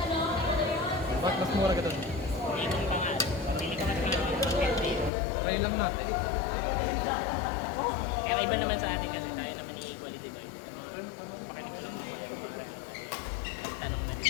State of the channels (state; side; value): drops out; right; at 5.1 s